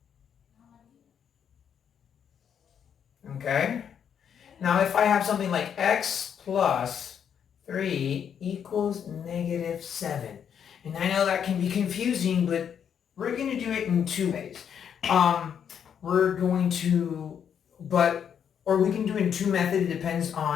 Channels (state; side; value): quieter; right; 8.2 dB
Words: Okay? Now if I have something like x plus 3 equals negative 7. And I know that can be confusing, but we're going to do it in two ways. We're going to, or we can do it in two methods. It depends